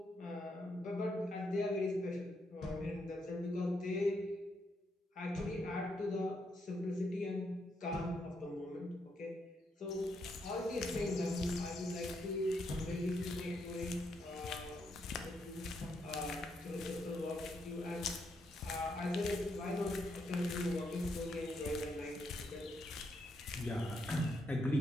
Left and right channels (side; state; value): both; normal; correlation 0.78